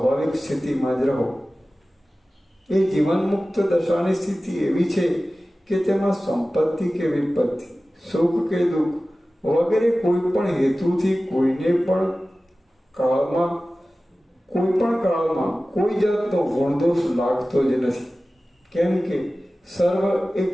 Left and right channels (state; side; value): normal; both; correlation 0.96